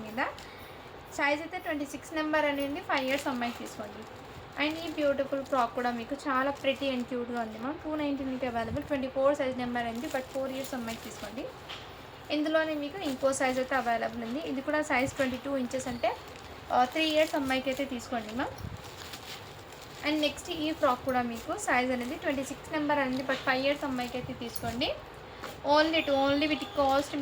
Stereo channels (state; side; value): identical; both; correlation 1.00